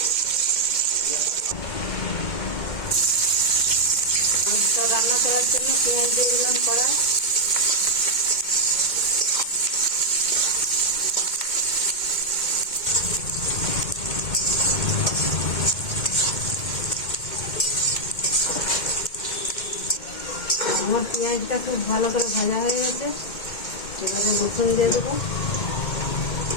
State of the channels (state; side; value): late; right; 2.1 ms